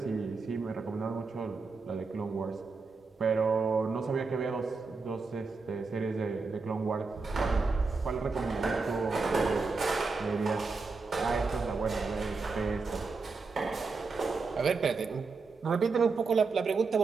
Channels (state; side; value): quieter; left; 4.3 dB